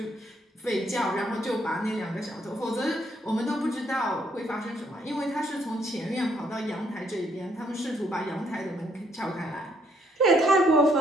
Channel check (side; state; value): both; normal; correlation 0.70